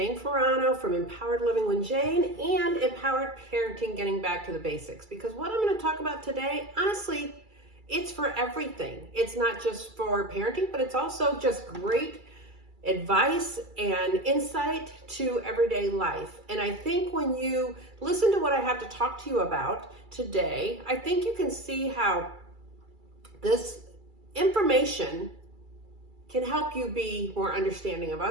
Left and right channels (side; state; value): left; late; 2.3 ms